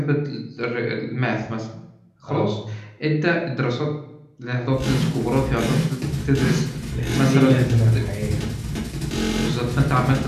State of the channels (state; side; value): identical; both; correlation 1.00